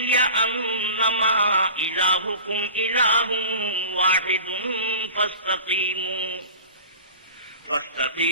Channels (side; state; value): both; inverted; correlation -0.38